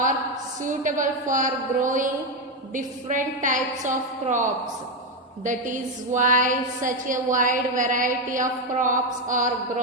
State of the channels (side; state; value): both; normal; correlation 0.08